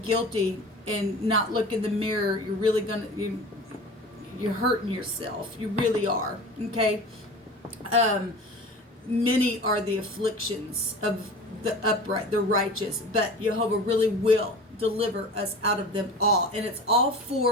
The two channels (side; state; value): both; normal; correlation 0.37